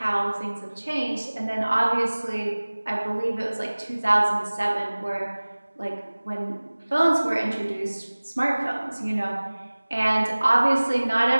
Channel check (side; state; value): both; inverted; correlation -1.00